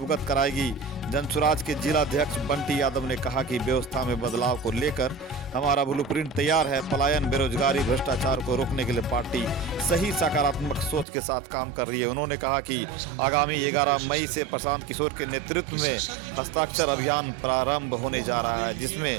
कराएगी। जनसुराज के जिलाध्यक्ष बंटी यादव ने कहा कि व्यवस्था में बदलाव को लेकर हमारा ब्लूप्रिंट तैयार है। पलायन, बेरोजगारी, भ्रष्टाचार को रोकने के लिए पार्टी सही सकारात्मक सोच के साथ काम कर रही है। उन्होंने कहा कि आगामी 11 मई से प्रशांत किशोर के नेतृत्व में हस्ताक्षर अभियान प्रारंभ होने जा रहा है,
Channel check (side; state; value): left; drops out; at 11.1 s